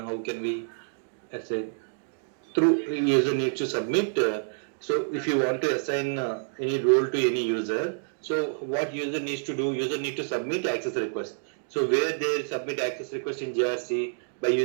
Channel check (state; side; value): silent; left; digital silence